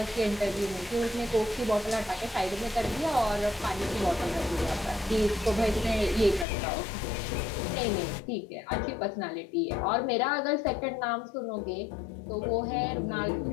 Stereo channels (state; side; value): drops out; right; at 6.5 s